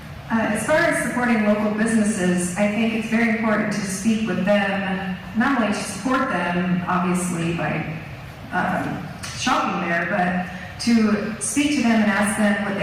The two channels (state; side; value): identical; both; correlation 1.00